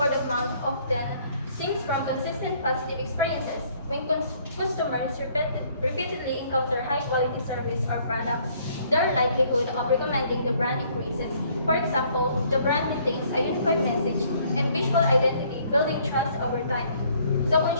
of mouth often stems from consistent positive experiences. When customers repeatedly encounter high-quality service or products, their likelihood of recommending the brand increases. For example, the brand maintains a unified message and visual identity, building trust over time. So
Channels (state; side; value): inverted; both; correlation -0.62